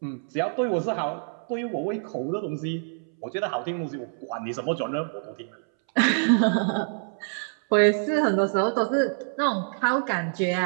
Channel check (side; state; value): left; silent; 61 dB below the other